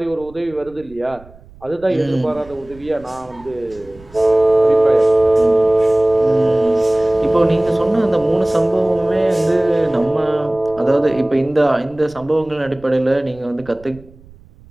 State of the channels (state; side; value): noise; right; rumble, 24 dB below the sound